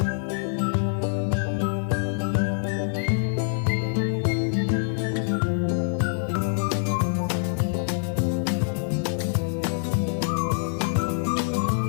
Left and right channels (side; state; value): right; silent; digital silence